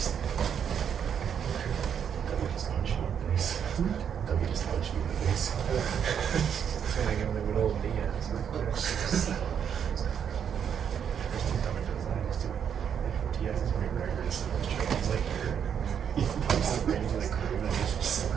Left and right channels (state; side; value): quieter; left; 8.1 dB